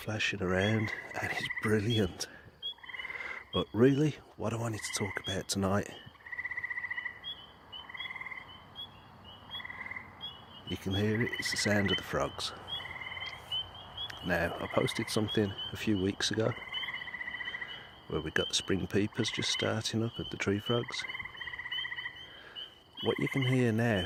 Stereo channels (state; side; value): identical; both; correlation 1.00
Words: around and it's brilliant. But really, what I wanted to talk about tonight, you can hear it, it's the sound of the frogs. Now, I posted something a few weeks ago where we got the spring peepers just starting up and the tree frogs. What you can hear